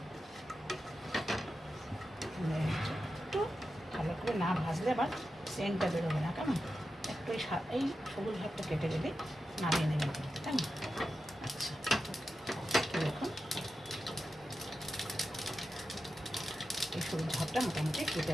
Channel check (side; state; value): both; normal; correlation 0.90